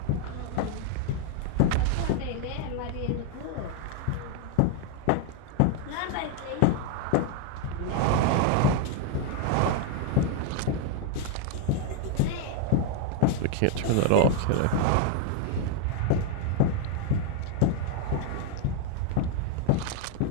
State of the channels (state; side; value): different; both; correlation 0.01